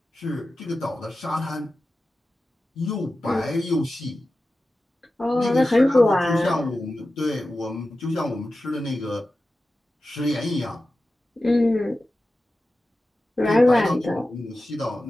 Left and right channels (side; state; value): both; normal; correlation 0.94